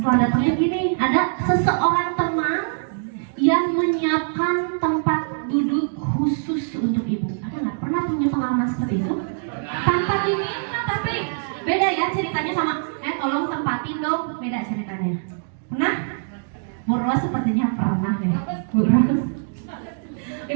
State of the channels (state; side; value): silent; left; digital silence